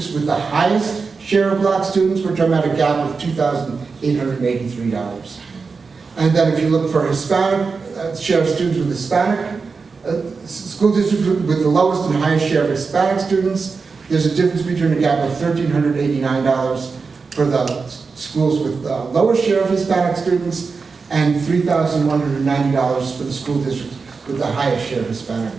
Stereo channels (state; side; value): quieter; left; 4.7 dB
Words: with the highest share of black students, we're talking about a gap of $2,883. And then if you look for Hispanic, share of students with Hispanic, school districts with the lowest and highest share of Hispanic students, there's a difference between a gap of $1,389 for the schools with the lowest share of Hispanic students and $3,190 for the school districts with the highest share of Hispanic